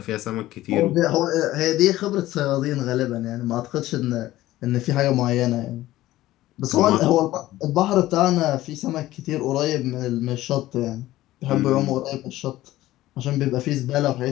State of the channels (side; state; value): right; quieter; 15.8 dB